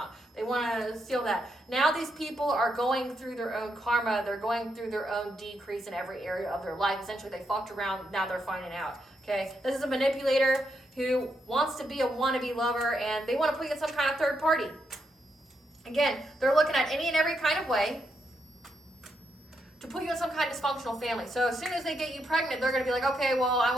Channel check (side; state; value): both; normal; correlation 0.80